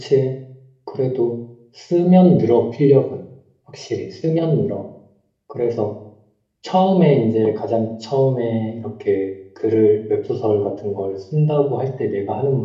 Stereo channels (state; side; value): identical; both; correlation 1.00